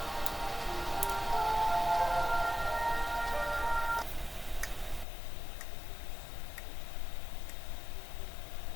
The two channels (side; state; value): right; drops out; at 5.1 s